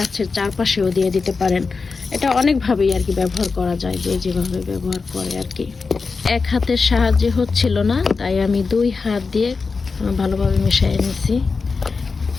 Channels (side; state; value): right; quieter; 4.6 dB